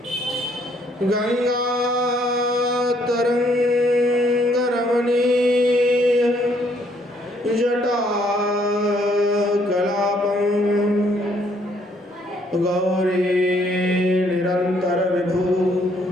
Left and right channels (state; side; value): normal; both; correlation 0.67